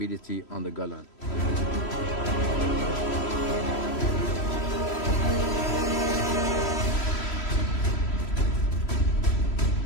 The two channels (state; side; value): late; right; 3.1 ms